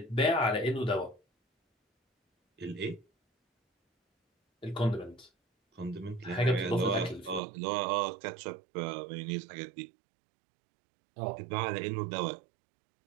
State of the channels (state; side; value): drops out; left; at 7.4 s